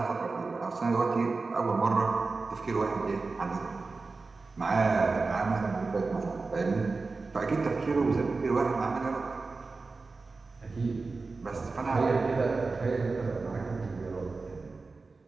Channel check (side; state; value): left; quieter; 3.9 dB